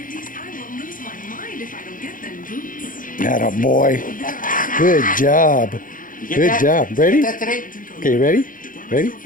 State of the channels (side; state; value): right; late; 0.39 ms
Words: Atta boy. Good job. Good job. Ready? Okay, ready? Ready?